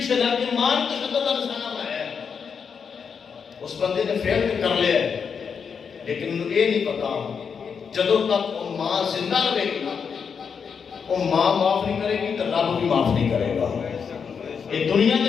لگ کے ماں تشدد کا نشانہ بنایا. اس بندے نے فیل کر لیا لیکن انہوں یہ نہیں پتا جدوں تک وہ ماں زندہ رہے گی نا وہ ماں معاف نہیں کرے گی تو رب بھی معاف نہیں کرے گا. یہ دنیا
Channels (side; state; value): right; quieter; 6.4 dB